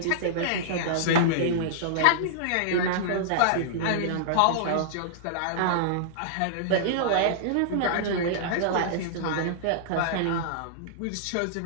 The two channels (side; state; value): both; different; correlation -0.02